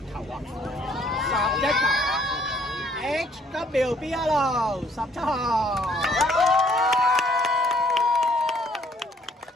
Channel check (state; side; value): normal; both; correlation 0.63